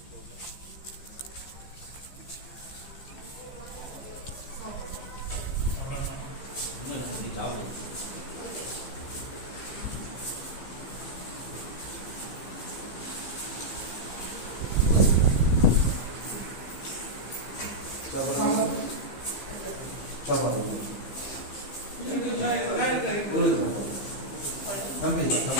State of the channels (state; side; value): late; right; 15 ms